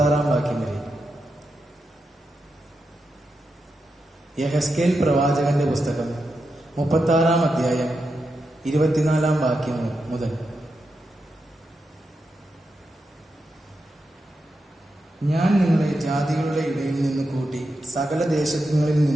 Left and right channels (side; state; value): both; normal; correlation 0.87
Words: വാക്യം വരെ. യെഹെസ്കേൽ പ്രവാചകന്റെ പുസ്തകം 36-ാം അധ്യായം 24-ാം വാക്യം മുതൽ. ഞാൻ നിങ്ങളെ ജാതികളുടെ ഇടയിൽ നിന്ന് കൂട്ടി സകല ദേശങ്ങളിൽ